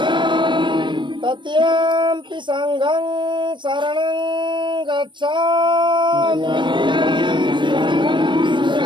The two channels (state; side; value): late; left; 0.23 ms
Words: तृतीयंपि संघं शरणं गच्छामि